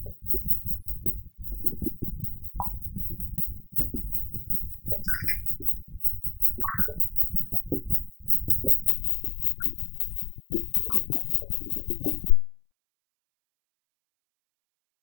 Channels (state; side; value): drops out; right; at 8.9 s